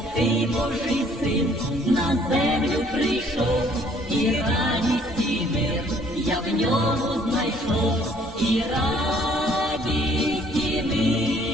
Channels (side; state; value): both; normal; correlation 0.60